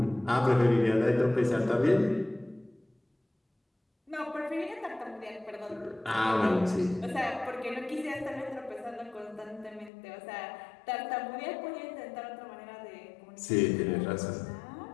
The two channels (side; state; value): right; drops out; at 9.9 s